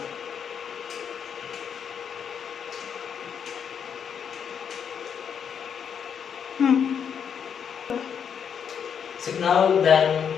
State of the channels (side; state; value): right; quieter; 7.5 dB